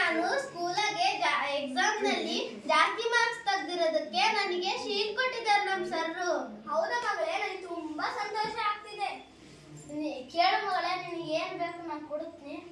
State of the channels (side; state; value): both; identical; correlation 1.00